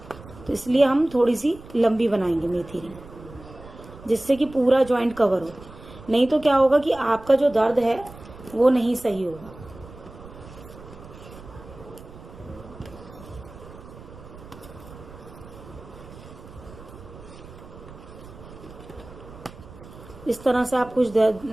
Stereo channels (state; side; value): noise; right; rumble, 18 dB below the sound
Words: तो इसलिए हम थोड़ी सी लंबी बनाएंगे मेथी रिंग, जिससे कि पूरा जॉइंट कवर हो। नहीं तो क्या होगा कि आपका जो दर्द है वो नहीं सही होगा। इस तरह से आप कुछ